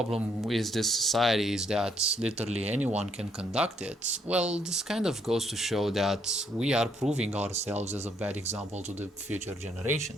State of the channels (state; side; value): normal; both; correlation 0.71